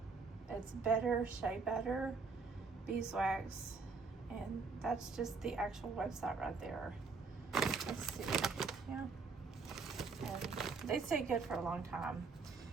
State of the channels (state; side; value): quieter; left; 4.5 dB